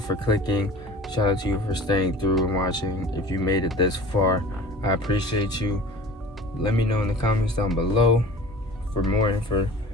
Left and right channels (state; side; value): normal; both; correlation 0.42